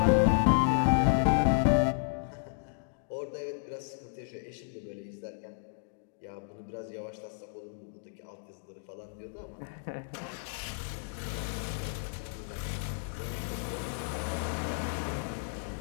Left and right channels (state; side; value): silent; right; digital silence